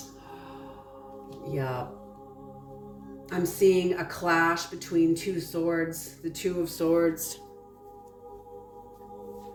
Yeah. I'm seeing a clash between two swords, the Two of Swords.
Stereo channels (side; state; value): both; identical; correlation 1.00